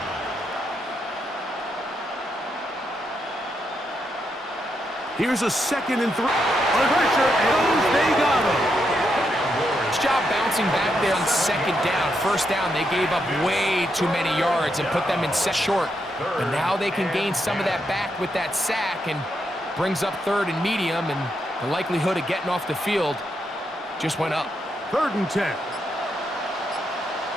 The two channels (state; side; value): normal; both; correlation 0.81